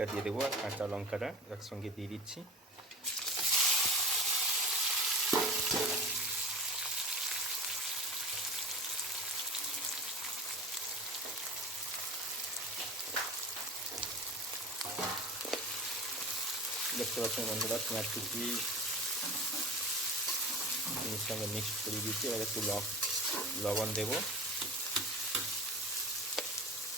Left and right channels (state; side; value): normal; both; correlation 0.33